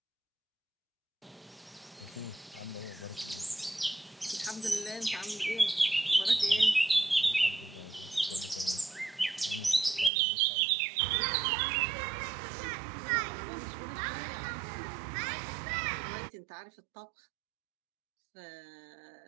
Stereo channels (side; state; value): left; drops out; at 10.1 s